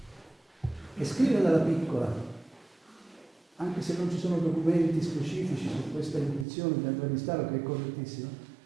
E scrive dalla piccola, anche se non ci sono documenti specifici su questa intuizione di Andrea Mestaro, che è correttissima,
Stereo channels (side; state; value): left; drops out; at 6.5 s